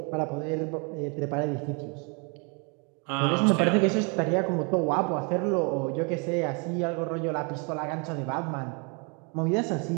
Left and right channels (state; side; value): quieter; left; 33.9 dB